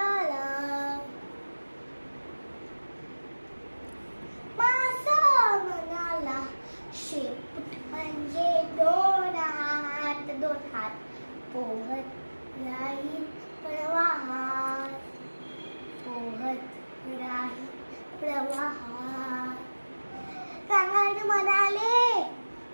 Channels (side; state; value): both; inverted; correlation -1.00